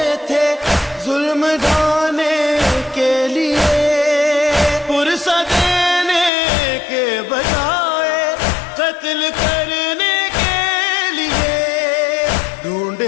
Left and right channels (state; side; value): drops out; right; at 6.3 s